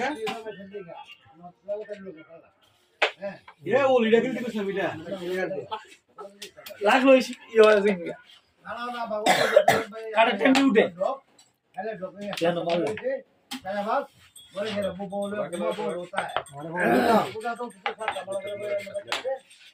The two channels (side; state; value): both; identical; correlation 1.00